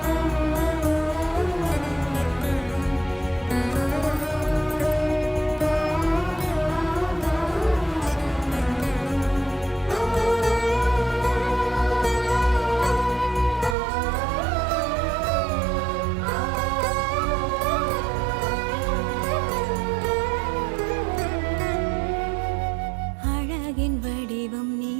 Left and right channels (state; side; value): drops out; left; at 13.8 s